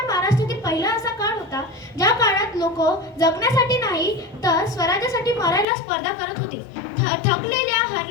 महाराष्ट्रातील पहिला असा काळ होता ज्या काळात लोक जगण्यासाठी नाही तर स्वराज्यासाठी मरायला स्पर्धा करत होते. थकलेल्या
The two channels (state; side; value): drops out; right; at 5.7 s